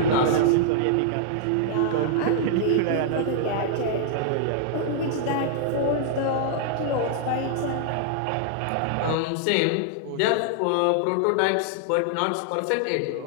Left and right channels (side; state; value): both; different; correlation -0.01